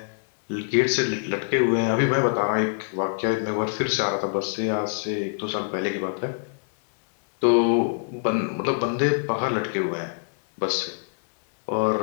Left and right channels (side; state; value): right; silent; 62 dB below the other